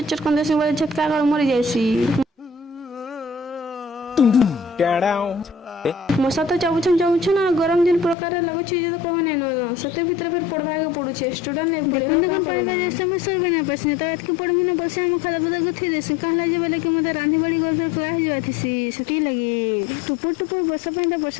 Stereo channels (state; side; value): drops out; right; at 8.2 s